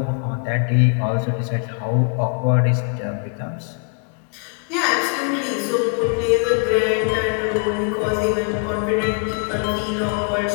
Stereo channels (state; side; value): quieter; right; 40.0 dB